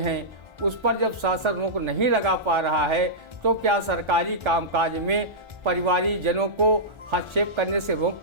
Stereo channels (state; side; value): late; left; 1.4 ms